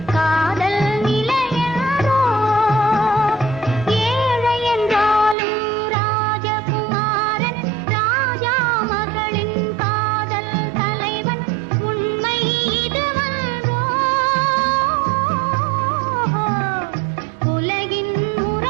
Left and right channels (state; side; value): drops out; left; at 5.4 s